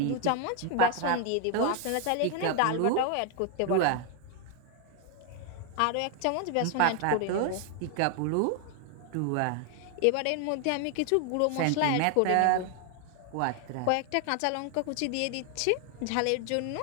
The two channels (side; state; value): both; different; correlation 0.01